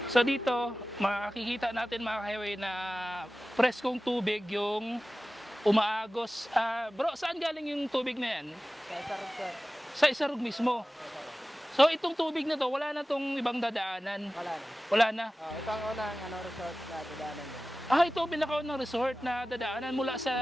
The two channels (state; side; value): normal; both; correlation 0.96